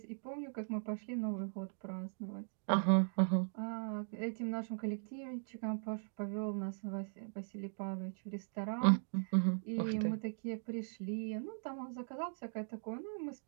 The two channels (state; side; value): silent; left; digital silence